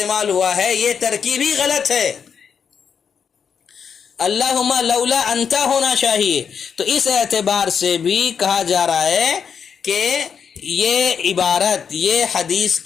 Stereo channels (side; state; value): right; quieter; 6.9 dB